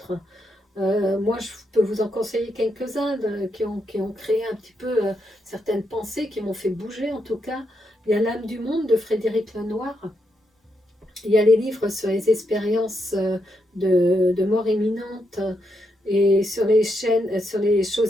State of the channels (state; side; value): normal; both; correlation 0.81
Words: Moi, je peux vous en conseiller quelques-uns qui ont créé un petit peu certaines pensées, qui m'ont fait bouger en tout cas. Il y a L'âme du monde de Frédéric Lenoir. Il y a les livres sur les expériences de mort imminente et sur les chaînes, sur les